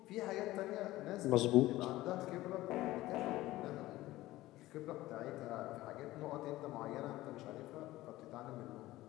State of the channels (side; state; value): right; quieter; 17.0 dB